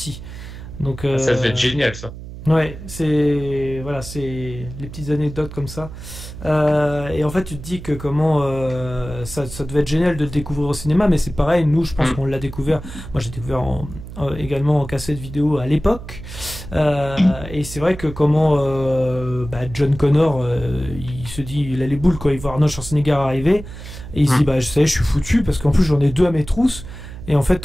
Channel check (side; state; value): right; noise; hum, 12 dB below the sound